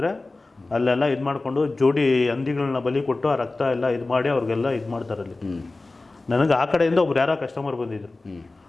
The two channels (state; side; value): quieter; right; 3.2 dB